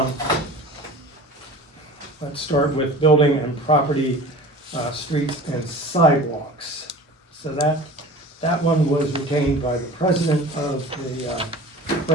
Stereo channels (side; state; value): both; normal; correlation 0.39